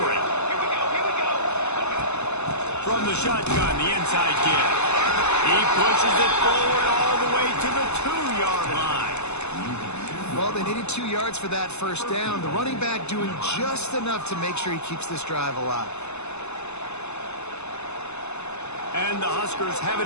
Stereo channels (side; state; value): right; late; 0.81 ms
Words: From the shotgun, the inside kid. He pushes it forward all the way to the 2-yard line. Well, they needed 2 yards for that first down. The running back doing just enough to make sure he keeps this drive alive. And the Huskers have